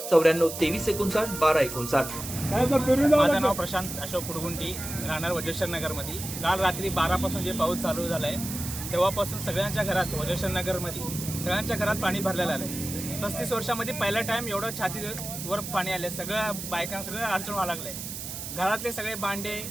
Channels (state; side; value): noise; right; hiss, 8 dB below the sound